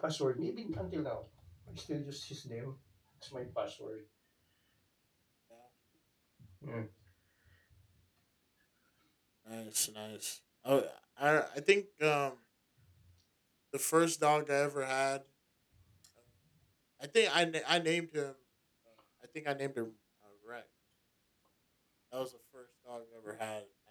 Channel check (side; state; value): both; identical; correlation 1.00